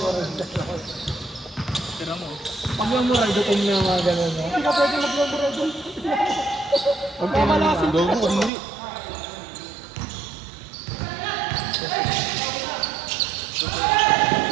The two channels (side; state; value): left; drops out; at 8.5 s